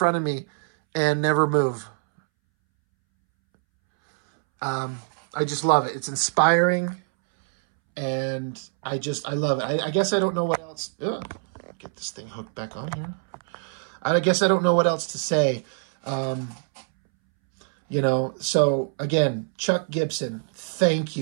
of me and never move. I just love it. It's inspiring. And I love it. I guess I don't know what else. Ugh. Get this thing hooked back on here. I guess I don't know what else to say. You know, so again, Chuck Gibson, thank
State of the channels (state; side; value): silent; left; 62 dB below the other